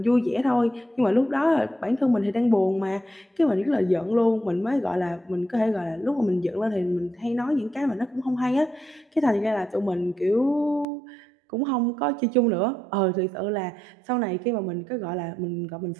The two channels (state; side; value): drops out; left; at 10.9 s